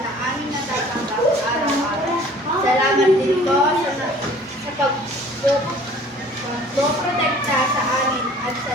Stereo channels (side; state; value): both; normal; correlation 0.50